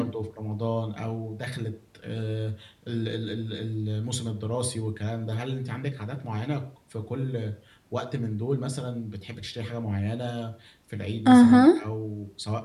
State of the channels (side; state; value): both; identical; correlation 1.00